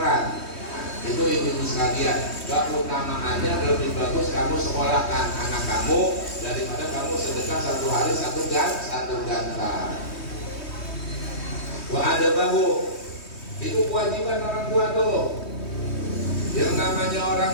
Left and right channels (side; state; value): right; late; 3.2 ms